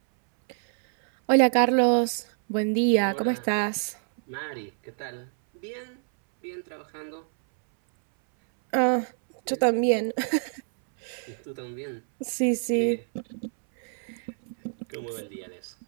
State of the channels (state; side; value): silent; left; 60 dB below the other